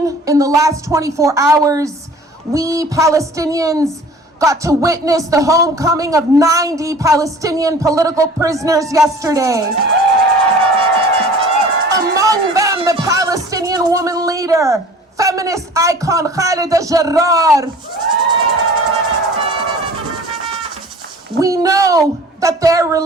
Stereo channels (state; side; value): normal; both; correlation 0.46